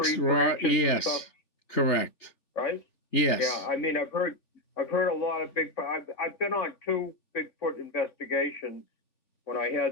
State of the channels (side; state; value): right; late; 3.4 ms